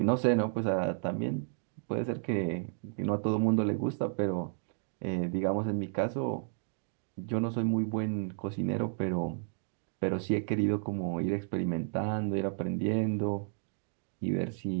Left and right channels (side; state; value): left; silent; digital silence